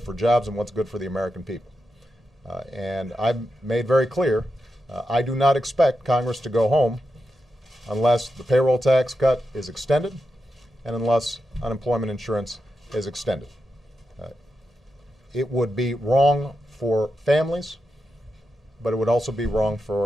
for jobs and what's good for the American people. And I've made very clear, I do not expect Congress to go home unless the payroll tax cut is extended and unless unemployment insurance is extended. It would be wrong for families, but it would also be wrong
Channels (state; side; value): normal; both; correlation 0.88